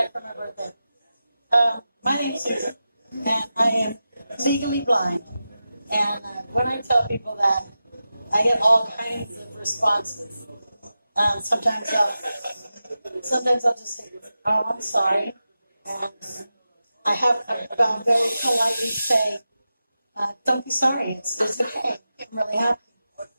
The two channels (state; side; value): inverted; both; correlation -0.92